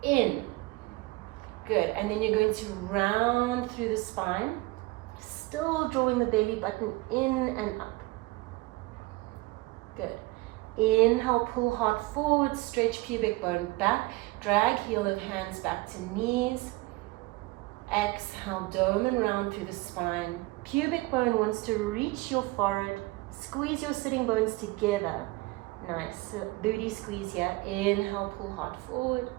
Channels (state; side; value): quieter; left; 21.8 dB